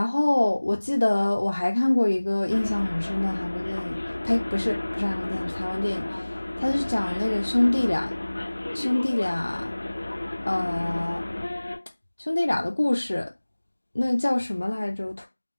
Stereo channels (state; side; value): inverted; both; correlation -1.00